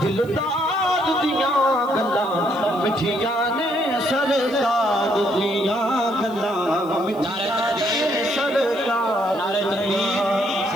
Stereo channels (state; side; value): noise; left; hiss, 25 dB below the sound